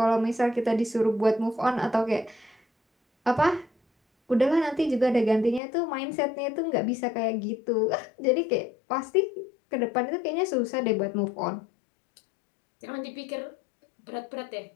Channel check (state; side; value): drops out; right; at 5.6 s